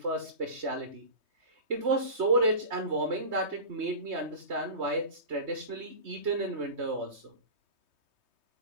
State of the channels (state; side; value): late; left; 3.2 ms